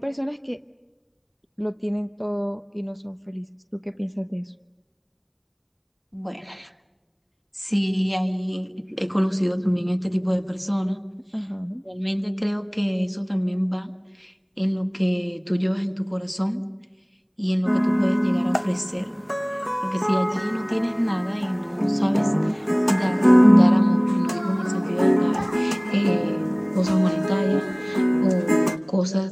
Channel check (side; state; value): both; identical; correlation 1.00